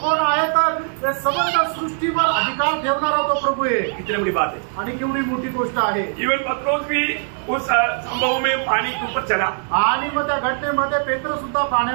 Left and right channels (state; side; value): silent; left; 64 dB below the other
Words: आहे, तर समग्र सृष्टीवर अधिकार ठेवणारा तो प्रभू आहे। कितनी बड़ी बात है आणि केवढी मोठी गोष्ट आहे। इवन पत्रोस भी उस संभव में पानी के ऊपर चला। आणि मग त्या घटनेमध्ये पेत्र सुद्धा